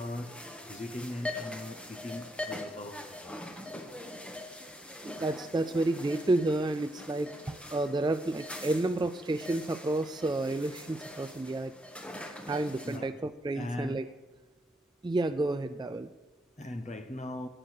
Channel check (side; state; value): both; normal; correlation 0.78